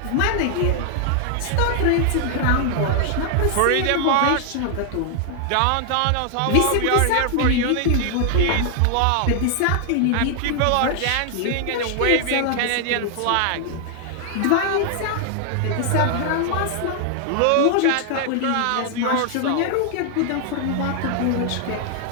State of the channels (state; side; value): different; both; correlation 0.00